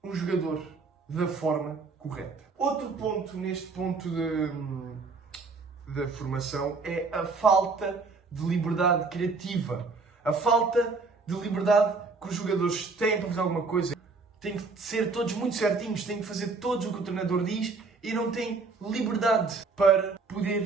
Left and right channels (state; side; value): quieter; left; 4.2 dB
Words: um jogador da forma correta. Outro ponto neste ponto da formação é a falta de liberdade criativa. A falta de liberdade que os jogadores têm para fazer alguma coisa. Têm que ser todos muito certinhos, têm que fazer todos o que o treinador diz e não têm liberdade para